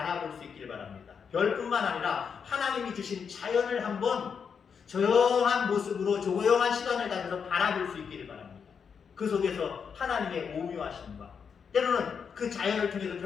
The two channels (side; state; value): right; quieter; 6.5 dB